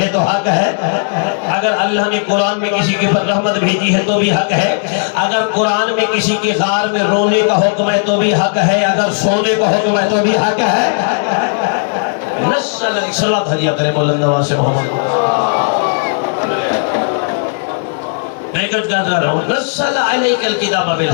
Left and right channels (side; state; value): right; silent; digital silence